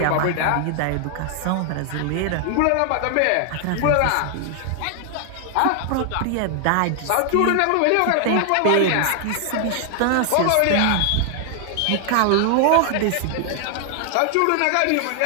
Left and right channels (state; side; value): different; both; correlation 0.00